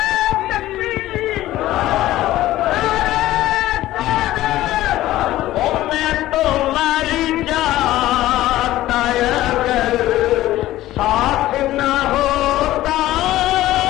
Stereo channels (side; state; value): right; quieter; 15.3 dB